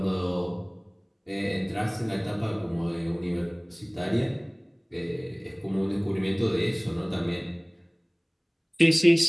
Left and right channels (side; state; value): both; identical; correlation 1.00